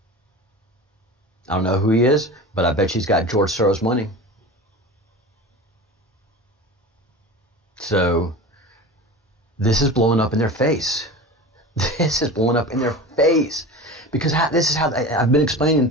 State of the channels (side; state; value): both; normal; correlation 0.32